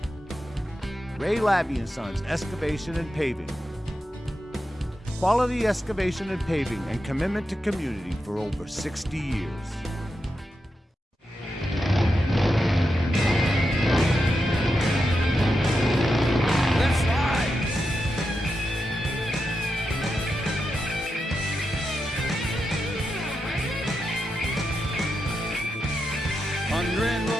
Ray Labby & Sons Excavation and Paving. Quality excavation and paving and commitment to community for over 60 years. Let's ride! Hundred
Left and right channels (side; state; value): both; normal; correlation 0.87